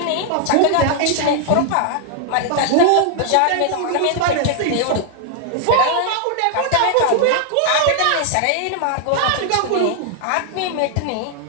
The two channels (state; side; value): different; both; correlation 0.00